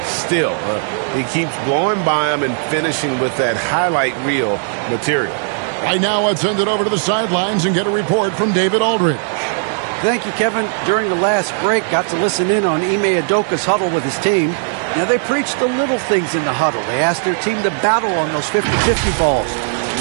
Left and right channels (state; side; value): silent; left; digital silence